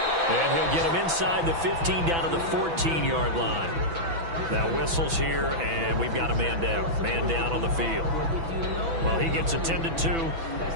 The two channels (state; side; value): late; left; 6.0 ms